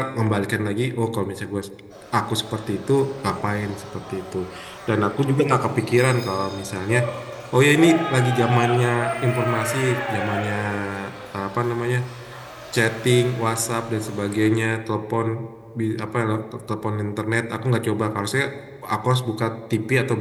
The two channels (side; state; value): both; identical; correlation 1.00